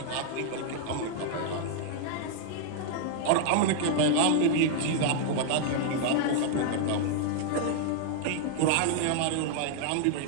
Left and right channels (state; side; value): different; both; correlation 0.00